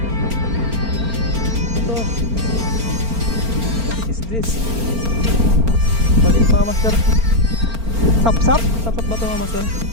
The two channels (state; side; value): late; left; 4.4 ms